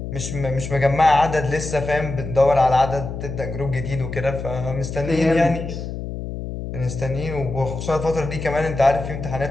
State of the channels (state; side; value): noise; left; hum, 7 dB below the sound